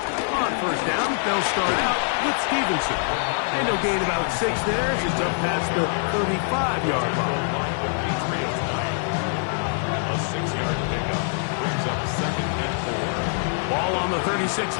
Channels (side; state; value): right; silent; digital silence